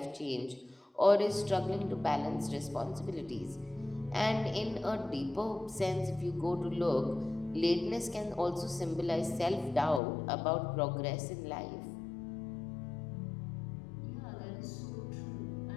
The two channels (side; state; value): right; drops out; at 10.0 s